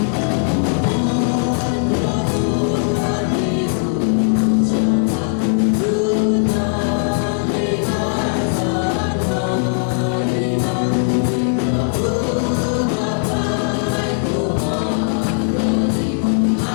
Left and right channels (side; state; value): right; silent; digital silence